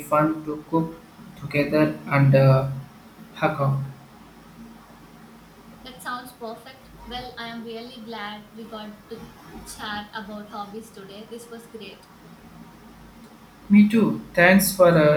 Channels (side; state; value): both; identical; correlation 1.00